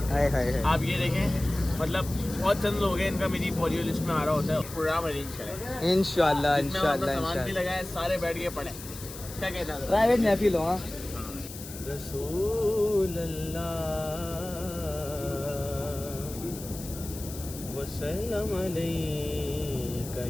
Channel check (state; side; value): noise; left; hiss, 13 dB below the sound